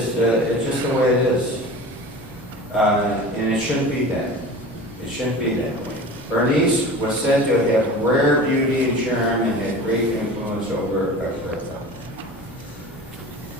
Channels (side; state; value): both; normal; correlation 0.36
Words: the way it is. And it shouldn't be that. It shouldn't be that way. Bernice was said to have rare beauty and charm and had great influence over Agrippa.